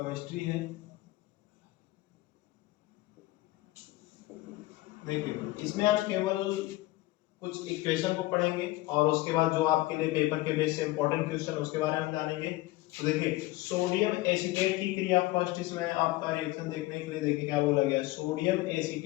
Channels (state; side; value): quieter; right; 18.8 dB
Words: है। देखिए इसमें आप केवल कुछ इक्वेशन को पढ़ेंगे और उसके बाद जो आपके लिए पेपर के बेस से इंपॉर्टेंट क्वेश्चन उसके बारे में जानेंगे। तो देखिए सोडियम एसीटेट की क्रिया, फर्स्ट इसमें आपका रिएक्शन देखने के लिए देखिए क्या बोला गया है, सोडियम